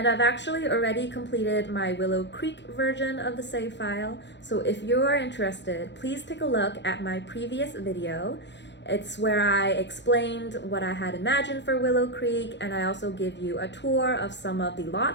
I've actually already completed my Willow Creek version of the save file. So if you are interested, please take a look at my previous video. It's where I explained what I had imagined for Willow Creek, and I also give you a tour of some of the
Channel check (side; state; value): right; late; 0.52 ms